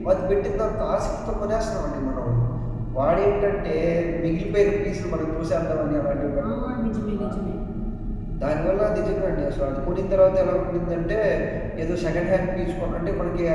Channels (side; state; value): both; identical; correlation 1.00